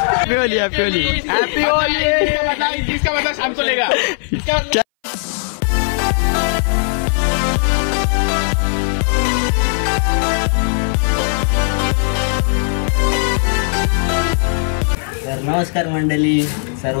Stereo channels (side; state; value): right; silent; 62 dB below the other